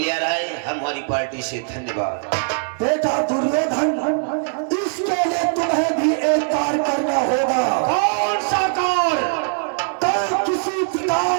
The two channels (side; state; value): left; silent; digital silence